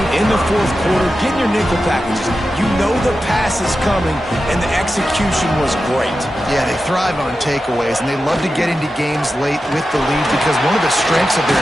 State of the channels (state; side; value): normal; both; correlation 0.91